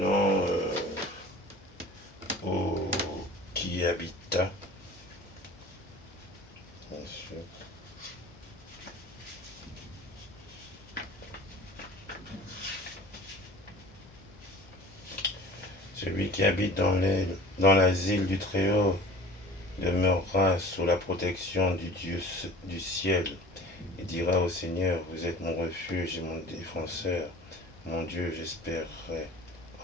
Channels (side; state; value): both; normal; correlation 0.43